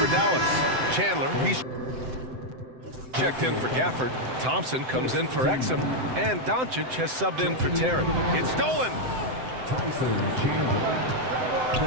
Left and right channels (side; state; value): left; late; 7.8 ms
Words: Dallas. Chandler, he's checked in for Gafford. Thompson comes in for Exum. And Doncic has subbed in for Terry. It's stolen.